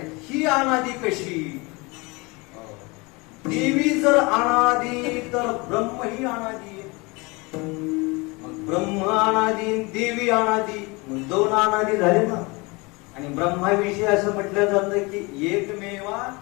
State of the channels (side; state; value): right; quieter; 26.4 dB